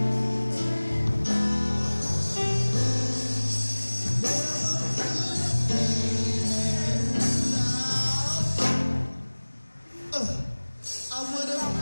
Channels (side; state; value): both; inverted; correlation -1.00